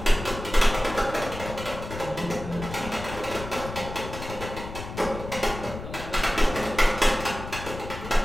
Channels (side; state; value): left; noise; rumble, 10 dB below the sound